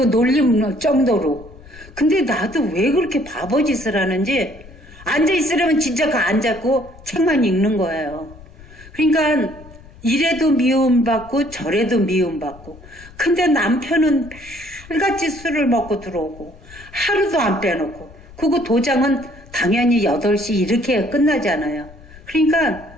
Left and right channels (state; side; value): noise; left; rumble, 20 dB below the sound